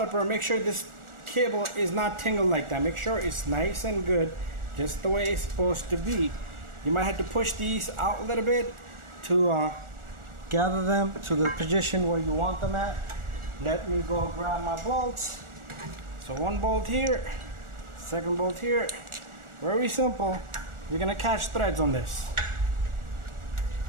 make sure this cable is not tangled like that. Make sure it's nice and good, just the way it's supposed to be. You might have to push these out a little bit to gather them to the position where you want them at. Let me go grab my bolts. So one bolt here, second bolt here. Very simple. We're gonna catch threads on this.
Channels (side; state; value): left; late; 1.4 ms